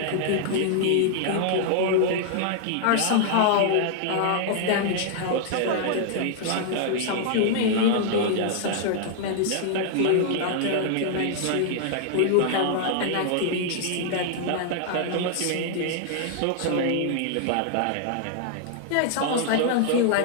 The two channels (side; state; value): both; different; correlation 0.00